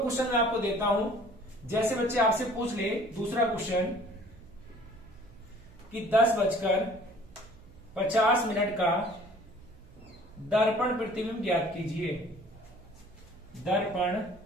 मैं आपको देता हूं। जैसे बच्चे आपसे पूछ ले दूसरा क्वेश्चन कि 10:50 का दर्पण प्रतिबिंब ज्ञात कीजिए। दर्पण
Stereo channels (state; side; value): noise; right; hum, 23 dB below the sound